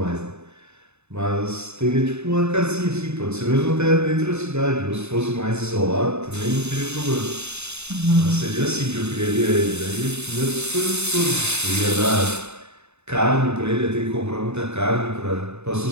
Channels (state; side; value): late; left; 0.81 ms